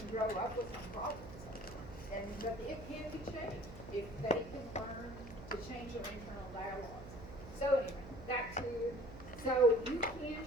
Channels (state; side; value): noise; right; hum, 14 dB below the sound